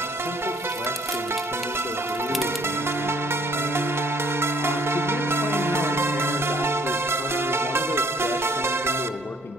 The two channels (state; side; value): normal; both; correlation 0.61